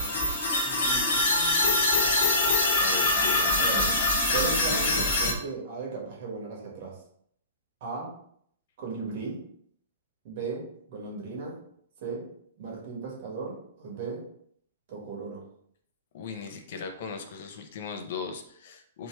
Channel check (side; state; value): both; inverted; correlation -0.37